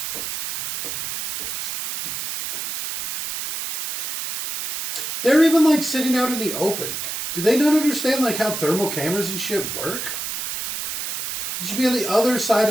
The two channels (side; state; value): right; noise; hiss, 4 dB below the sound